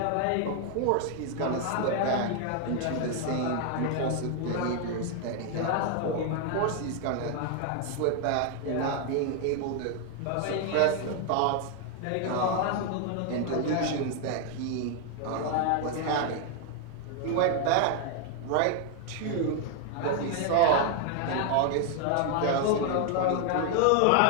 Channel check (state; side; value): different; both; correlation 0.00